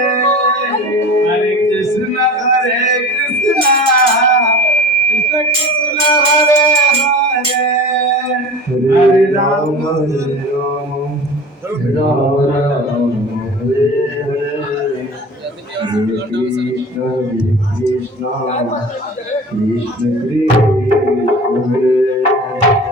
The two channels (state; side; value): normal; both; correlation 0.38